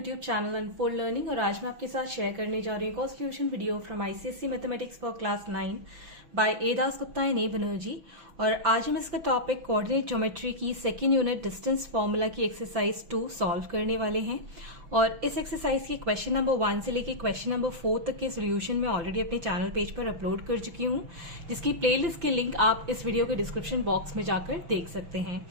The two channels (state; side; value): late; left; 6.1 ms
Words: channel unfold learning. और आज मैं आपके साथ शेयर करने जा रही हूँ constitution video from ICSE mathematics for class 9 by A Das Gupta and A Banerjee. और आज हम इसका टॉपिक कोऑर्डिनेट ज्योमेट्री की सेकेंड यूनिट डिस्टेंस फॉर्मूला की एक्सरसाइज 2 सॉल्व करने वाले हैं। और इस एक्सरसाइज के क्वेश्चन नंबर 1 से लेकर क्वेश्चन नंबर 4 तक के सोल्यूशन मैं ऑलरेडी अपने चैनल पेज पर अपलोड कर चुकी हूँ, जिसकी प्लेलिस्ट के लिंक आप इस वीडियो के डिस्क्रिप्शन बॉक्स में जाकर देख सकते हैं।